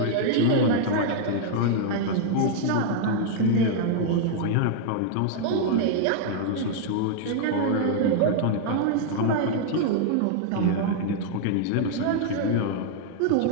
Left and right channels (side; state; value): both; different; correlation -0.01